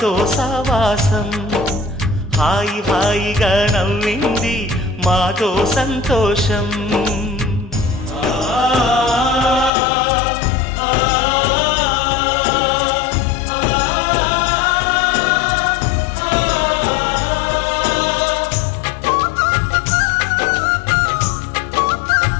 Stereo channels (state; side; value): drops out; right; at 9.7 s